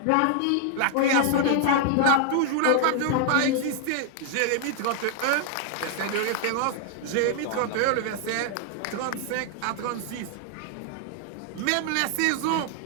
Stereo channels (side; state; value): both; different; correlation 0.00